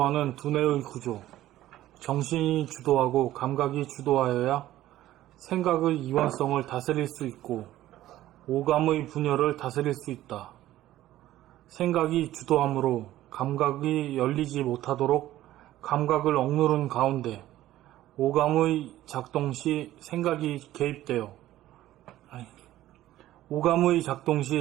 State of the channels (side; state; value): left; quieter; 14.4 dB